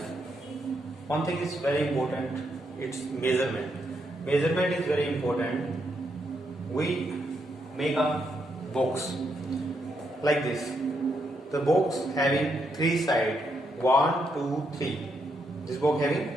one thing is very important, it's measurement. Measurement is very important. We make a box like this. The box having 3 sides, 1, 2, 3. This box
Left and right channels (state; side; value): normal; both; correlation 0.79